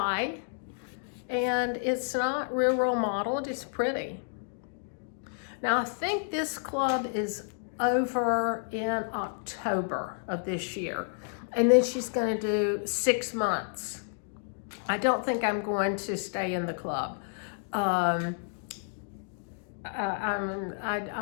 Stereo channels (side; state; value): right; silent; digital silence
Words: and it's not real modeled, it's pretty. Now I think this club is over in October of this year, and then she's going to do 6 months. I don't think I'm going to stay in the club. I